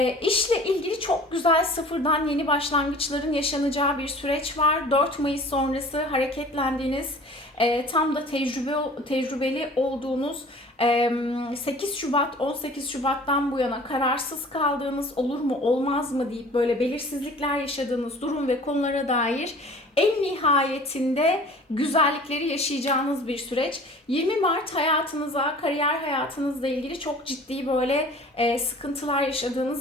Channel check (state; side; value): normal; both; correlation 0.46